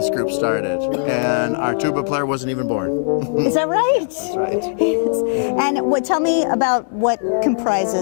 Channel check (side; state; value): right; silent; digital silence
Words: group started, and our tuba player wasn't even born. Is that right? That's right. Yes. And tell me about what